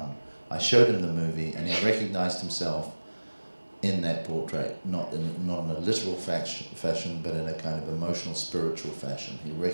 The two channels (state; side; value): inverted; both; correlation -1.00